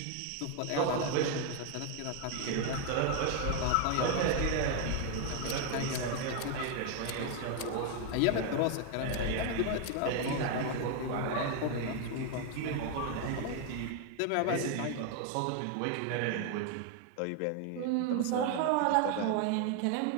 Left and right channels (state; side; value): different; both; correlation 0.01